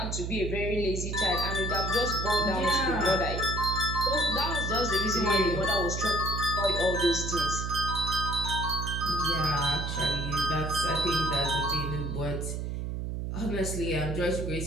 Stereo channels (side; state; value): right; noise; hum, 3 dB below the sound